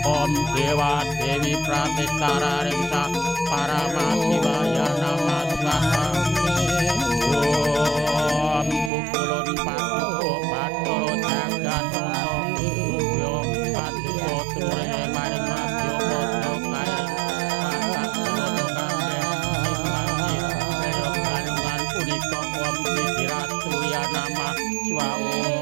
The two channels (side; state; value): left; drops out; at 8.9 s